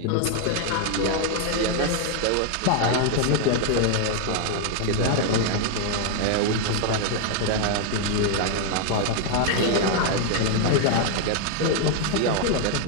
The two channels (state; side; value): different; both; correlation 0.00